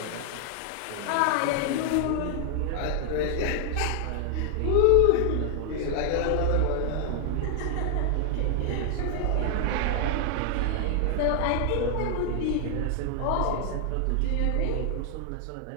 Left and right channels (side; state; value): both; different; correlation 0.00